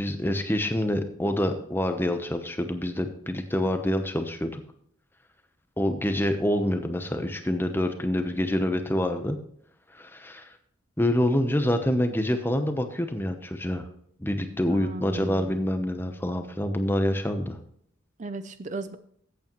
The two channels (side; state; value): both; normal; correlation 0.84